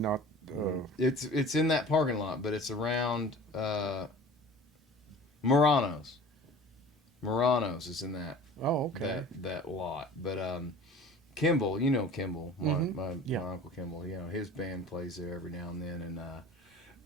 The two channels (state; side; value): normal; both; correlation 0.42